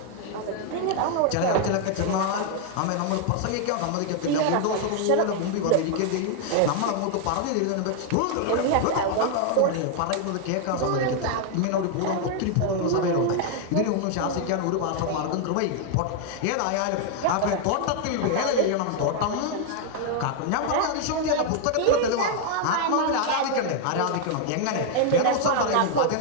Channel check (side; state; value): both; different; correlation 0.00